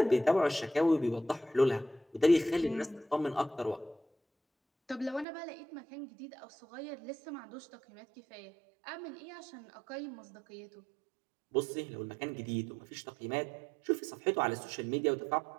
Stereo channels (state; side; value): drops out; left; at 5.2 s